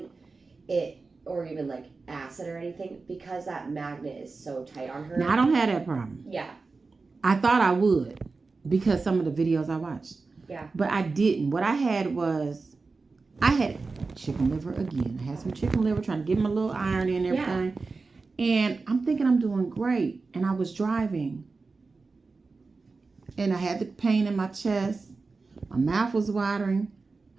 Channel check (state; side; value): quieter; left; 4.1 dB